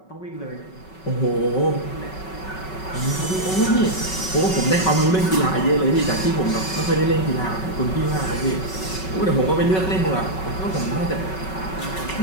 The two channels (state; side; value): late; right; 5.3 ms